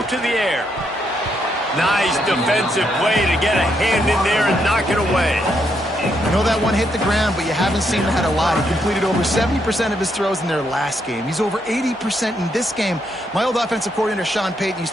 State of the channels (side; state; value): both; normal; correlation 0.77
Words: the air. Nice defensive play to get a hand in there and knock it away. I know that one hit the ground, but you haven't seen that a lot. He completed over 70% of his throws in their last game. He's over 80% in this game. My old offensive coordinator, Sean Payton,